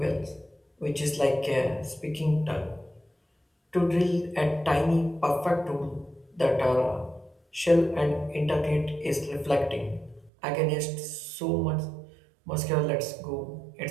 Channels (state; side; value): drops out; left; at 10.3 s